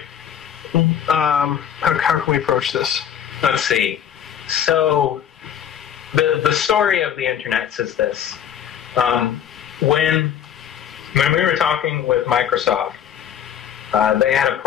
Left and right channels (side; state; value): right; quieter; 9.2 dB